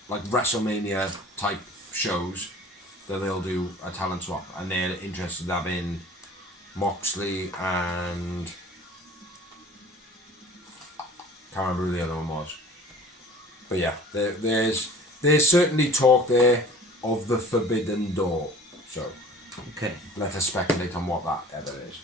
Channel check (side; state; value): both; normal; correlation 0.46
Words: like WrestleMania type shows that they'll do a talent swap, and they're interested in having Moxley and can't remember who the other one was. But yeah, there's certainly talk there of the Forbidden Door. So okay, let us speculate on what that ever is.